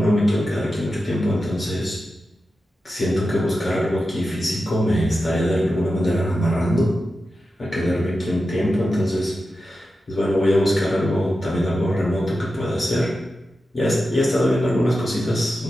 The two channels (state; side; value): normal; both; correlation 0.91